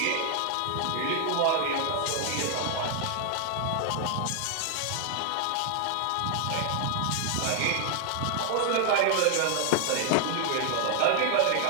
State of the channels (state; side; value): different; both; correlation 0.00